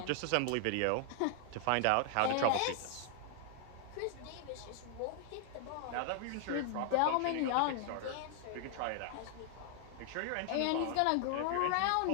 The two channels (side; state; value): both; different; correlation 0.00